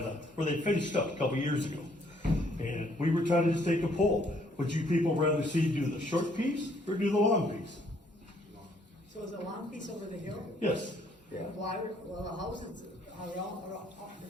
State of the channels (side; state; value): both; normal; correlation 0.66